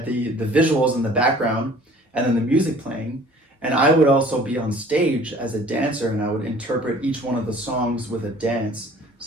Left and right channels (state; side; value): normal; both; correlation 0.50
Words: the visuals in the background and then the music playing. And I would also be on stage as a dancer, and I would interpret each one of the songs with a dance.